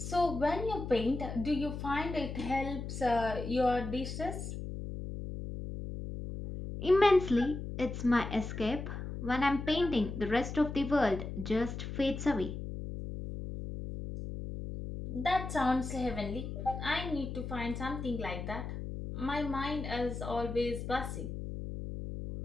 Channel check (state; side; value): noise; left; hum, 6 dB below the sound